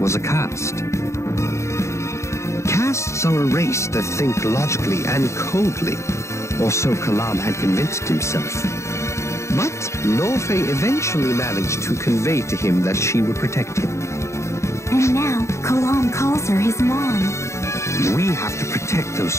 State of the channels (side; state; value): right; late; 0.14 ms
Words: a caste. Castes are a race that think logically and coldly, or so Kalam had convinced himself. But Norfei eventually managed to convey to him that she would protect him. And now, Kalam calls her his mom. We have to protect